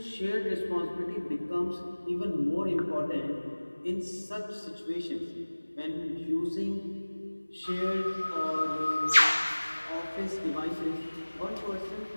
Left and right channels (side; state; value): both; inverted; correlation -1.00